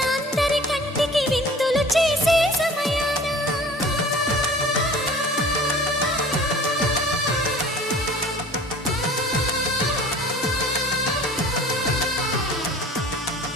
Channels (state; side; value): normal; both; correlation 0.45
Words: అందరి కంటికి విందులు చేసే సమయాన